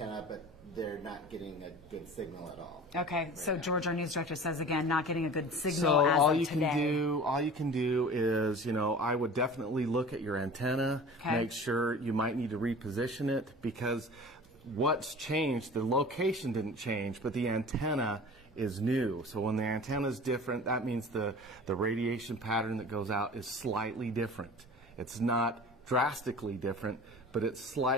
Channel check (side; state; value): both; normal; correlation 0.40